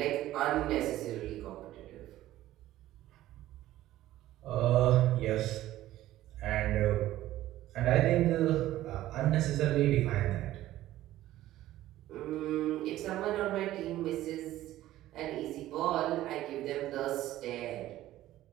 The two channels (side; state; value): left; quieter; 14.6 dB